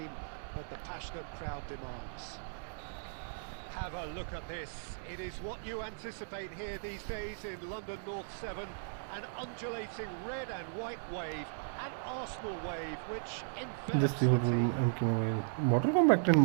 that the passionate crowd demands. Have a look at this. It is what you anticipate here these days in London North 7. An undulating red and white wave, an Arsenal wave, which envelops Just the see what team. MK mobile. Mortal Kombat in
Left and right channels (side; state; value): left; silent; digital silence